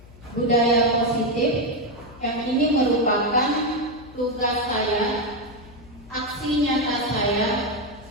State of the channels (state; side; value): noise; left; hum, 21 dB below the sound